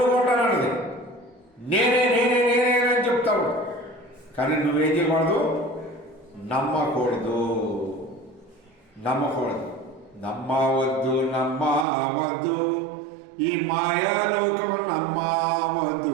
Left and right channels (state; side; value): drops out; left; at 11.9 s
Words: నేనే అని చెప్తావు. కానీ నువ్వేం చేయకూడదు? నమ్మకూడదు. నమ్మవద్దు ఈ మాయాలోకం